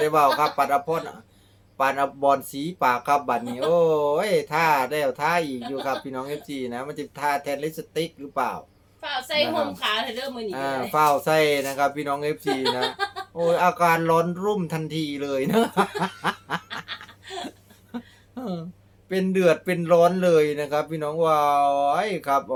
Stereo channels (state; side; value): identical; both; correlation 1.00